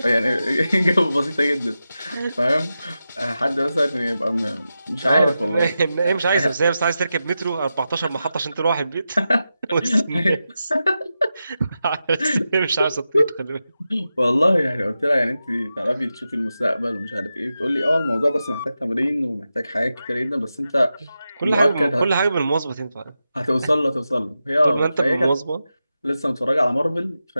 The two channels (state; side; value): inverted; both; correlation -0.91